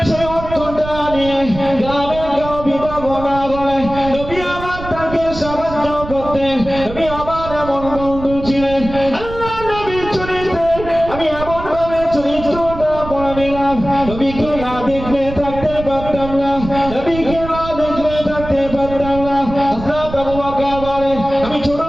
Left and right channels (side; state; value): right; noise; rumble, 11 dB below the sound